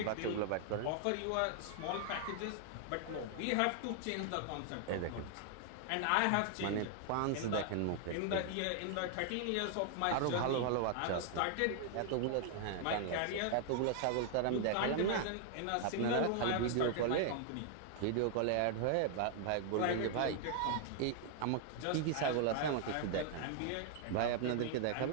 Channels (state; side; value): different; both; correlation 0.00